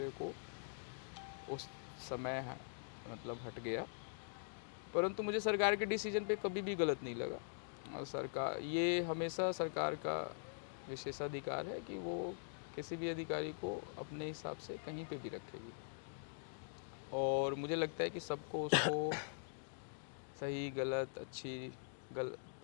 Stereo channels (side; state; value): right; silent; digital silence